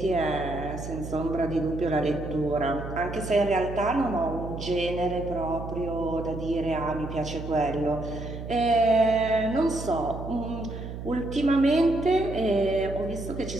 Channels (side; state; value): right; noise; hum, 8 dB below the sound